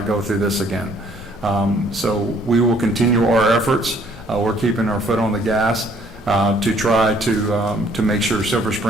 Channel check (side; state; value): both; normal; correlation 0.62